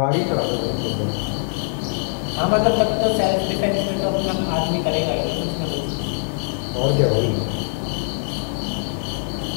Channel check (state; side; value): silent; right; 64 dB below the other